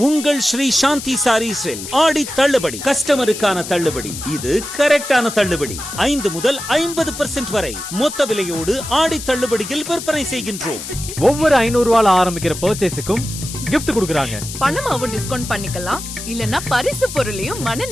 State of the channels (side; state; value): left; noise; hiss, 9 dB below the sound